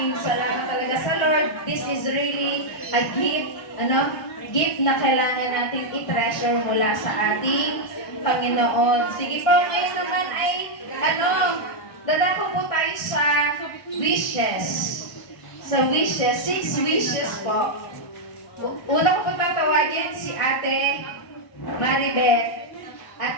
salamat talaga sa Lord. This is really a gift, gift na kailangan natin i-treasure mula sa ating Panginoon. Sige po, ngayon naman ay, dadako po tayo sa wishes. Sa wishes, 6 wishes po. Una ko po tatawagin si Ate Maribeth.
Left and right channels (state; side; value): late; right; 1.4 ms